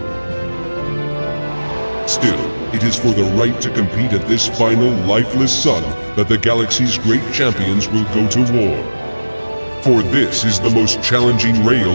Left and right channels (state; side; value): inverted; both; correlation -1.00